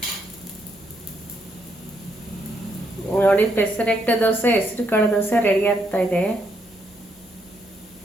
ನೋಡಿ, ಪೆಸರೆಟ್ಟು ದೋಸೆ, ಹೆಸರು ಕಾಳು ದೋಸೆ ರೆಡಿ ಆಗ್ತಾ ಇದೆ.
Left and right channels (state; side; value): normal; both; correlation 0.75